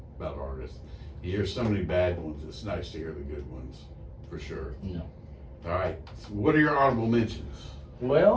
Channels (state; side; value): identical; both; correlation 1.00